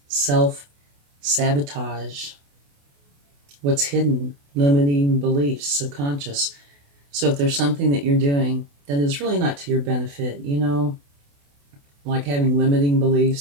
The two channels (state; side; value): late; left; 28 ms